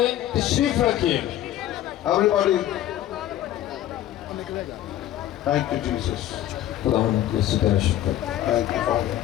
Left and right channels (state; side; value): quieter; right; 12.8 dB